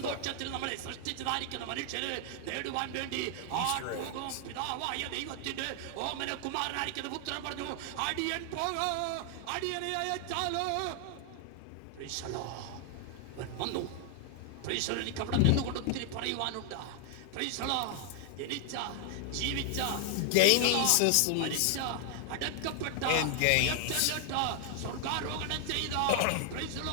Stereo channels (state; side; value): different; both; correlation 0.00